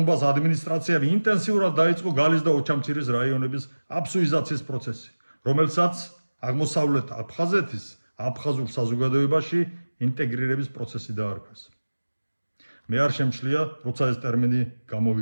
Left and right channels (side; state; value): both; inverted; correlation -1.00